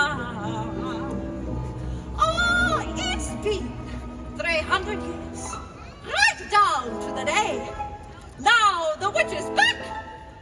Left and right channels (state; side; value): identical; both; correlation 1.00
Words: Oh, it's been 300 years, right down to the day. Now the witch is back,